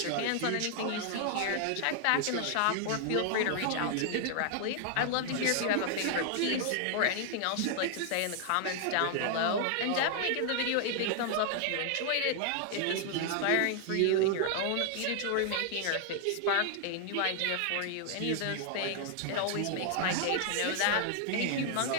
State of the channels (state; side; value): different; both; correlation 0.00